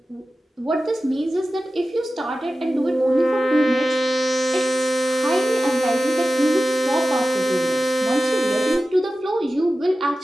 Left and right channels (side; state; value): both; normal; correlation 0.95